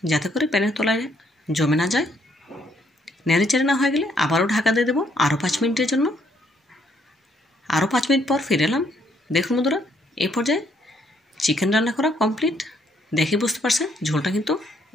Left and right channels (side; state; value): both; normal; correlation 0.70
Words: যাতে করে প্যানের তলায় জমে না যায়। নেড়েচেড়ে না হয়ে গেলে আবারও ঢাকা দিয়ে দেবো আরও 5 মিনিটের জন্য। আরও 5 মিনিট পর ফিরে এলাম। দেখুন বন্ধুরা এই পর্যায়ে চিকেন রান্না করা কমপ্লিট। দেখে বুঝতে পারছেন ঝোলটা কিন্তু